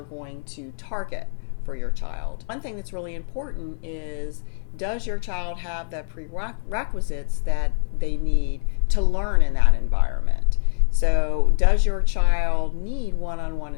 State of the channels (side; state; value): right; silent; digital silence